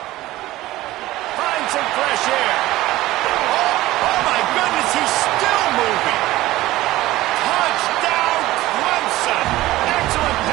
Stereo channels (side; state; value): left; quieter; 16.9 dB